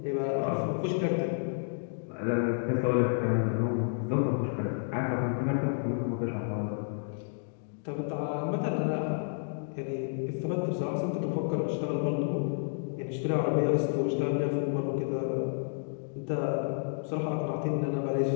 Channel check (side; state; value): right; silent; digital silence